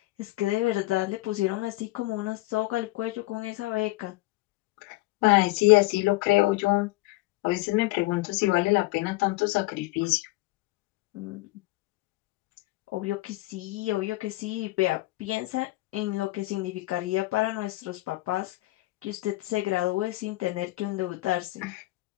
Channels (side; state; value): right; quieter; 20.2 dB